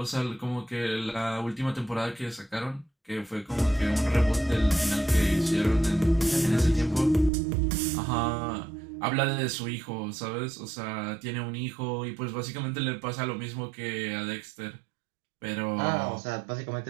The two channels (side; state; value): left; drops out; at 7.3 s